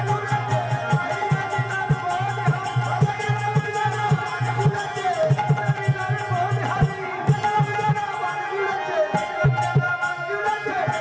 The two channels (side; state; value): both; identical; correlation 1.00